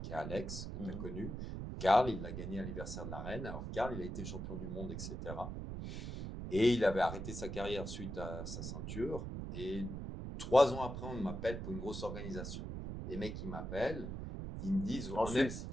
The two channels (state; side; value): noise; right; rumble, 6 dB below the sound